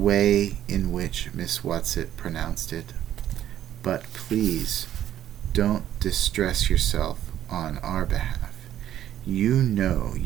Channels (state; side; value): quieter; left; 11.5 dB